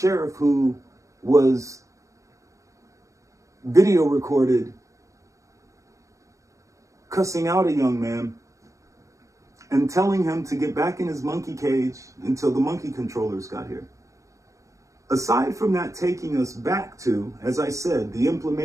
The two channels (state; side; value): late; left; 0.15 ms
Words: who was video recorded cussing out a young man and telling him to get back in his monkey cage until the monkey controllers got here. Aside from that taking us back to, as I said, the